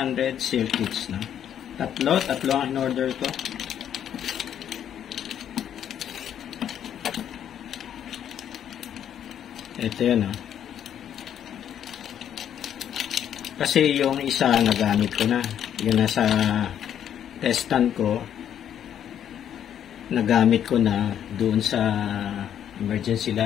circuits na. Tatlo ang in-order ko. Ito yun, oh. Kasi yung isa nagamit ko na. Yung nasa testan ko, nagamit ko na doon sa emergency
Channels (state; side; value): quieter; right; 9.7 dB